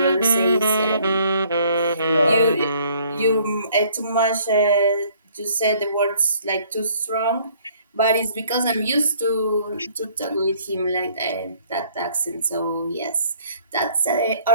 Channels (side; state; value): both; inverted; correlation -0.60